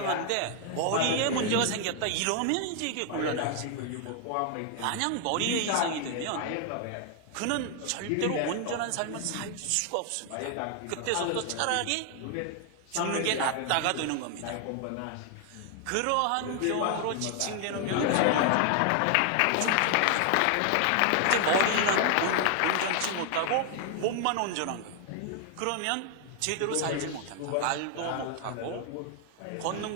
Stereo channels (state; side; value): different; both; correlation 0.00